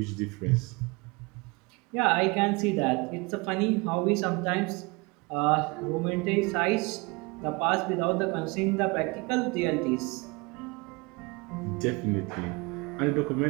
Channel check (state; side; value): quieter; left; 27.1 dB